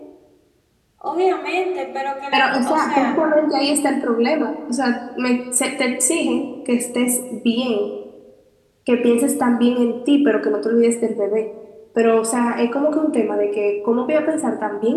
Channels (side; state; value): both; identical; correlation 1.00